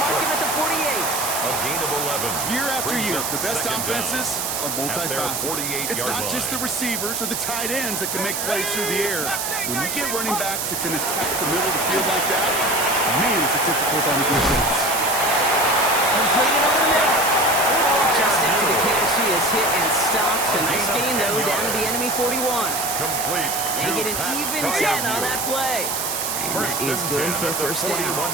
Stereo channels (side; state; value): right; noise; hiss, 2 dB below the sound